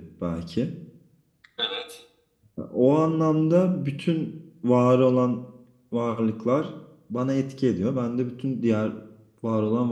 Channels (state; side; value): identical; both; correlation 1.00